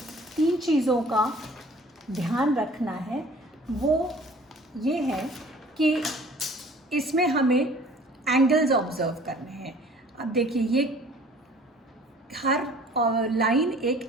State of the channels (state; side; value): normal; both; correlation 0.51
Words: 3 चीज़ों का ध्यान रखना है। वो ये है कि इसमें हमें एंगल्स ऑब्ज़र्व करने हैं। अब देखिए, ये हर लाइन एक